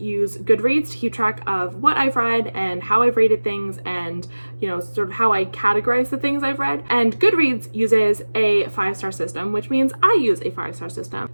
Goodreads to keep track of what I've read and how I've rated things and, you know, sort of how I categorize the things I've read. And Goodreads uses a 5-star system, which means I use a 5-star system.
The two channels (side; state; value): both; inverted; correlation -1.00